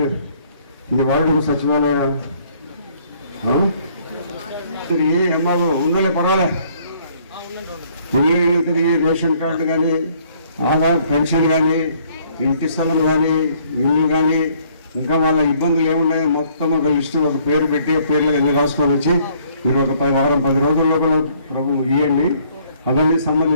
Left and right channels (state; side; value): inverted; both; correlation -0.62